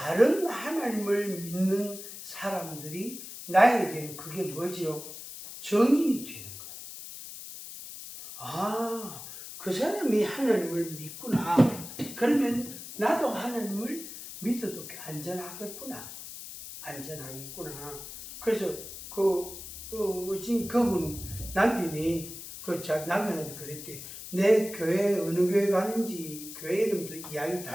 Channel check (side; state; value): left; noise; hiss, 11 dB below the sound